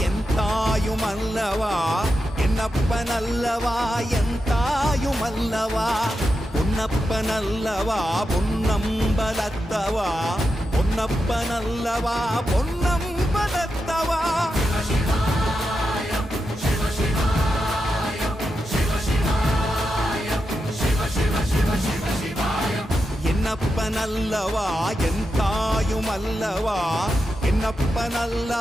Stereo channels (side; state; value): both; normal; correlation 0.88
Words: என் தாயுமல்லவா, என்னப்பனல்லவா என் தாயுமல்லவா, பொன்னப்பனல்லவா பொன்னம்பலத்தவா, பொன்னப்பனல்லவா பொன்னம்பலத்தவா. என்னப்பனல்லவா என் தாயுமல்லவா,